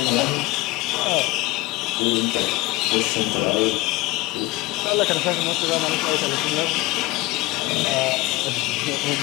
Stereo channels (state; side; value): quieter; right; 21.2 dB